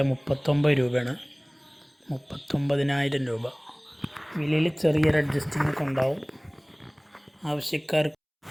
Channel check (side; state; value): both; identical; correlation 1.00